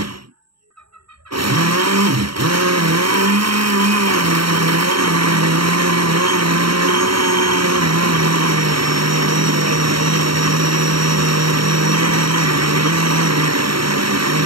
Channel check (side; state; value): left; late; 0.74 ms